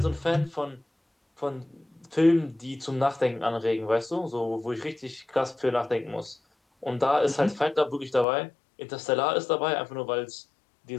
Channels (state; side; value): drops out; right; at 8.2 s